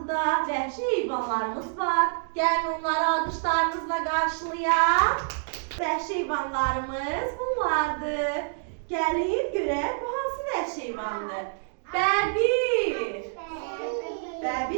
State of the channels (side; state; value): left; silent; digital silence